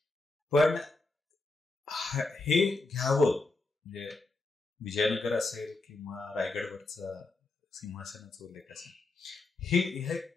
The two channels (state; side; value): quieter; right; 3.2 dB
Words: पण हे घ्यावं म्हणजे विजयनगर असेल किंवा रायगडवरचा सिंहासनाचा उल्लेख असेल, हे